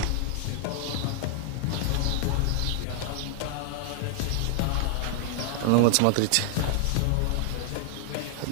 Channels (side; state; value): both; different; correlation -0.01